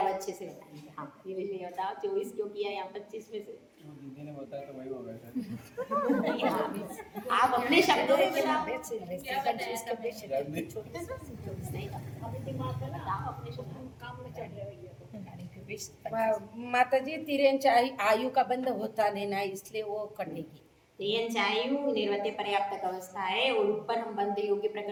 अच्छे से बताएंगे। हाँ नीलेश भैया बताओ 24 क्यों किया यहाँ 25 में से? दीदी ने बताया तो वही हो गया शायद। हाँ, आप अपने शब्दों में बताओ। क्या बताया सबने? नहीं बताओ अपने शब्दों में। माताजी तिरेंच्या आयु का बंध होता नहीं ना इसलिए वो कटेगी। त्रियंचायु निर्वत्य पर्याप्तक अवस्था है और ऊपर हम बंध योग्य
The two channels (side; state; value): both; identical; correlation 1.00